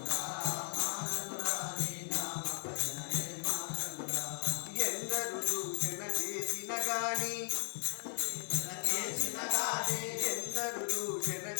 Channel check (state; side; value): silent; right; 53 dB below the other